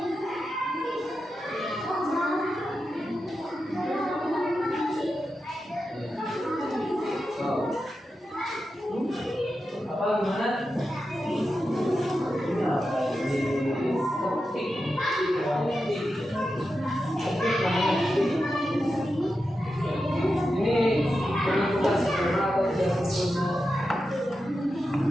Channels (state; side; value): normal; both; correlation 0.90